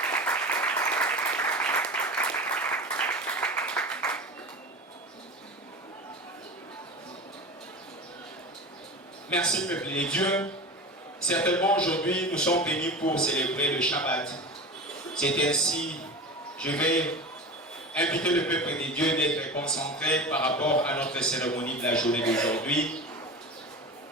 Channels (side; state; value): both; normal; correlation 0.30